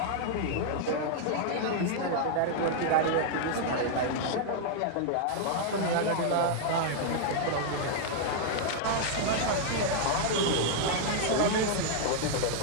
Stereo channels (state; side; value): different; both; correlation -0.01